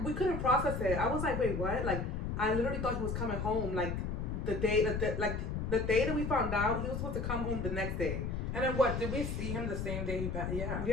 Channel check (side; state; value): left; noise; rumble, 2 dB below the sound